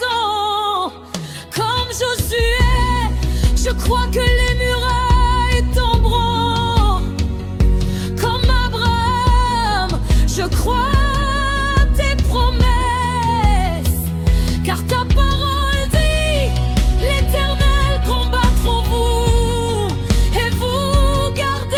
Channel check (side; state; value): both; identical; correlation 1.00